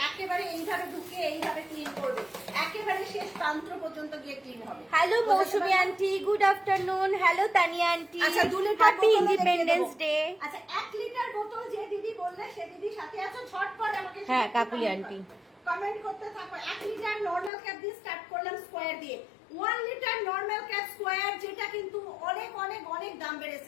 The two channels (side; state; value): right; drops out; at 17.5 s